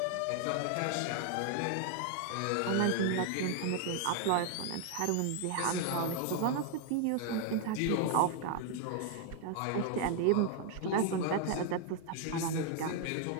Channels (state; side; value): different; both; correlation 0.00